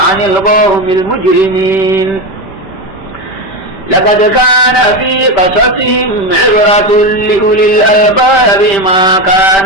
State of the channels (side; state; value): right; late; 5.2 ms